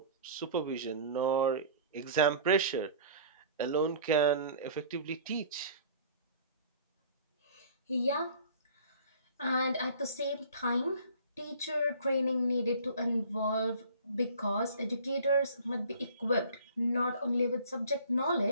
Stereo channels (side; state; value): both; inverted; correlation -0.47